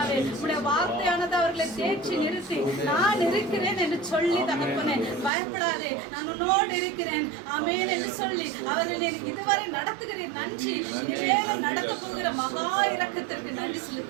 உடைய வார்த்தையானது அவர்களை தேற்றி நிறுத்தி நான் இருக்கிறேன் என்று சொல்லி தகப்பனே பயப்படாதே நான் உன்னோடு இருக்கிறேன் ஆமென் என்று சொல்லி அவர்களை இதுவரை நடத்துகிறேன். நன்றி. இனிமேலும் நடக்க போகிற மகா இரக்கத்திற்கு நன்றி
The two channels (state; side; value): drops out; left; at 5.3 s